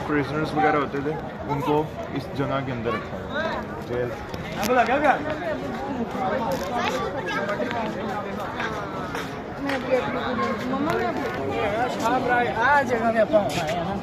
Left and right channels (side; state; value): both; identical; correlation 1.00